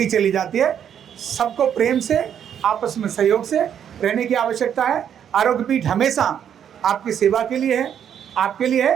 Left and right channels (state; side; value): quieter; left; 9.0 dB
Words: चली जाती है। सबको प्रेम से, आपस में सहयोग से रहने की आवश्यकता है। आरोग्य पीठ हमेशा आपकी सेवा के लिए है, आपके लिए